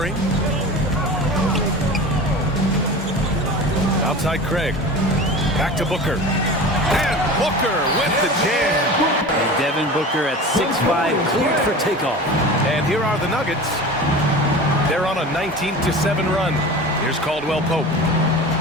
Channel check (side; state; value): both; normal; correlation 0.34